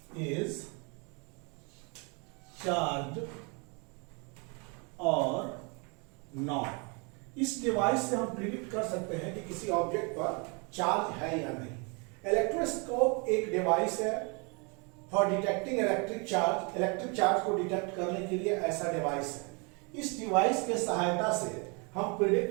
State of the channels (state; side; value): quieter; left; 32.7 dB